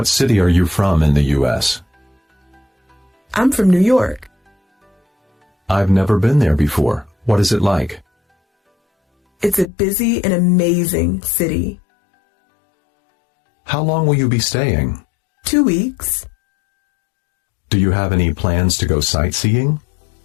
city are you from in the U.S.? I'm from New York. I've never been there before. What is it like? It's a busy and amazing city. How long will you be staying? 2 weeks. Do you have any plans to go sightseeing?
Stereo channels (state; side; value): drops out; right; at 9.7 s